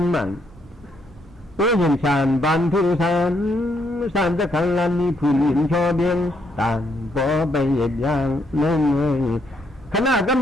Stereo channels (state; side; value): normal; both; correlation 0.74